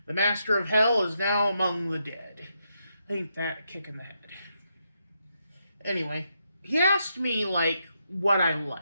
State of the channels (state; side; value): inverted; both; correlation -0.82